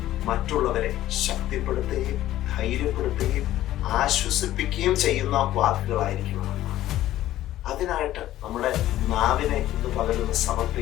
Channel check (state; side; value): quieter; right; 13.9 dB